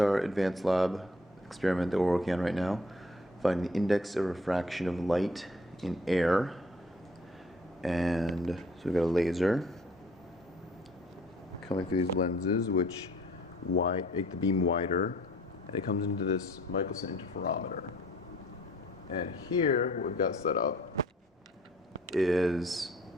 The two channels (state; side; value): normal; both; correlation 0.57